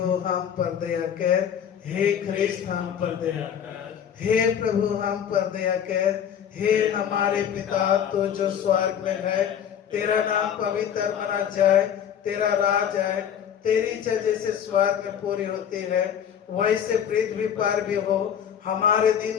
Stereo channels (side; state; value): right; quieter; 8.8 dB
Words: हम पर दया कर, हे ख्रीस्त हम पर दया कर, हे प्रभु हम पर दया कर। हे हमारे पिता तो जो स्वर्ग में है, तेरा नाम पवित्र माना जाए, तेरा राज आए, तेरी इच्छा जैसे स्वर्ग में पूरी होती है वैसे पृथ्वी पर भी हो। हमारे दिन